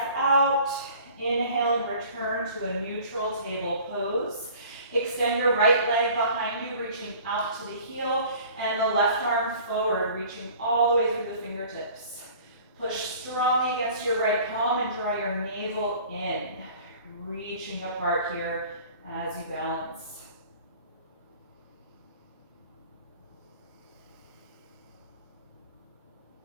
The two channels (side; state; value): both; inverted; correlation -0.48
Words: out, inhale and return to a neutral table pose. Extend your right leg behind you, reaching out to the heel, and the left arm forward, reaching all the way through the fingertips. Push strongly against your right palm and draw your navel in, reaching apart here as you balance.